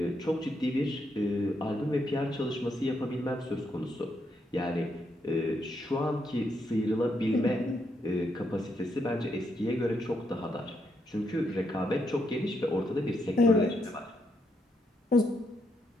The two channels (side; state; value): both; normal; correlation 0.78